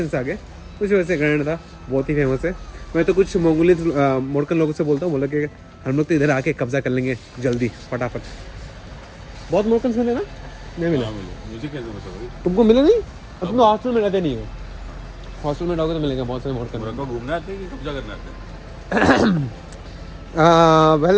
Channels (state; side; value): identical; both; correlation 1.00